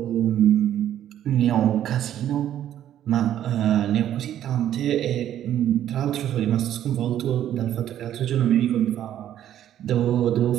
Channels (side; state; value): left; quieter; 11.2 dB